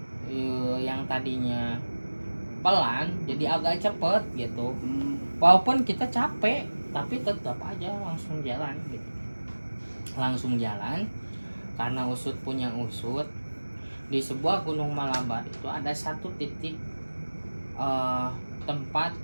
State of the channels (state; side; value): inverted; both; correlation -1.00